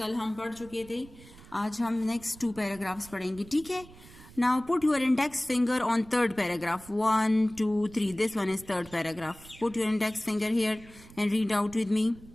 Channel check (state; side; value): noise; right; rumble, 20 dB below the sound